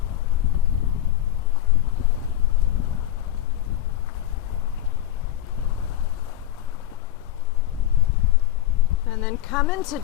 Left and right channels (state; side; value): quieter; right; 12.9 dB